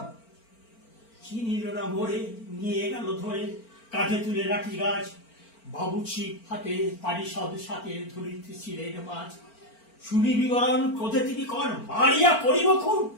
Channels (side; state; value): right; late; 4.4 ms